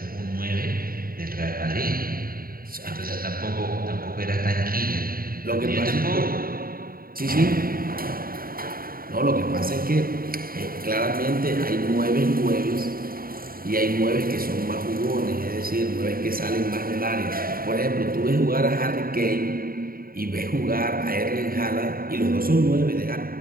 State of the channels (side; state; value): left; late; 0.43 ms